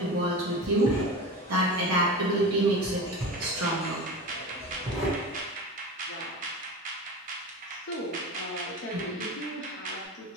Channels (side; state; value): both; normal; correlation 0.29